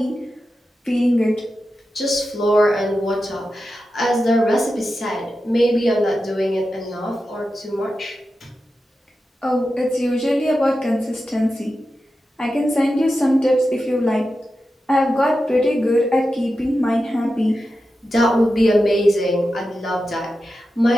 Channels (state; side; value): normal; both; correlation 0.91